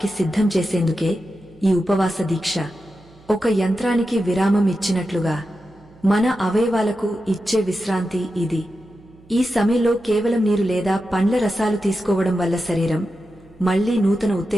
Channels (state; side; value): noise; right; hum, 26 dB below the sound